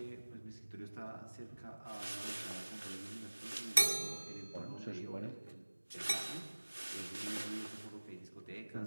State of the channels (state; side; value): inverted; both; correlation -1.00